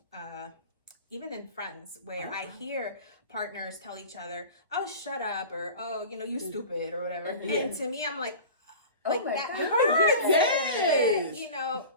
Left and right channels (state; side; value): inverted; both; correlation -0.36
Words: even in friends, where I hear partners tell each other, "Oh, shut up," or "Oh, you stupid," or whatever. And to me, I'm like that hurts. Yes.